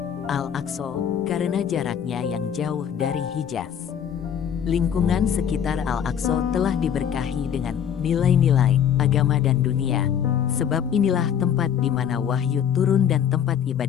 Al-Aqsa karena jaraknya yang jauh dari Hijaz. Lingkungan sekitar Al-Aqsa telah diberkahi dengan nilai-nilai agama dan dunia, sebab inilah tempat di mana wahyu turun dan tempat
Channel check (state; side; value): quieter; right; 8.6 dB